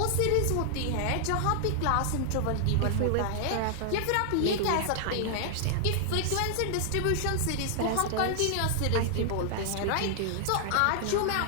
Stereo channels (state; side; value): different; both; correlation 0.00